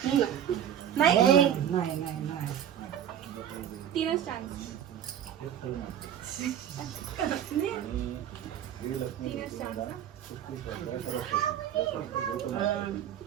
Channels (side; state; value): left; quieter; 9.9 dB